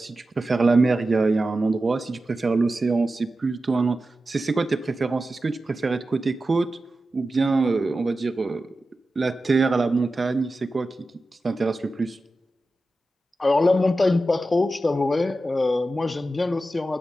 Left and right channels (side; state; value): both; normal; correlation 0.93